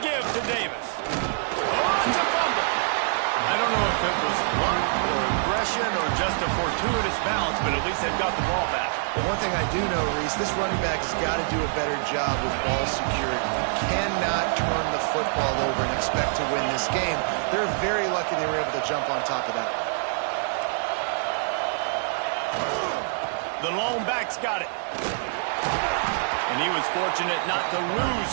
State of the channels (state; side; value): silent; left; digital silence